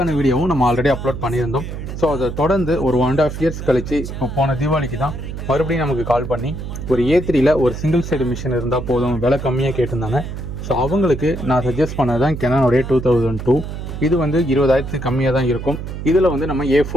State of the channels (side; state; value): right; noise; hum, 7 dB below the sound